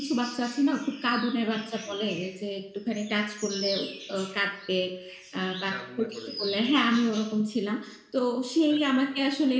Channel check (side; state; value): both; identical; correlation 1.00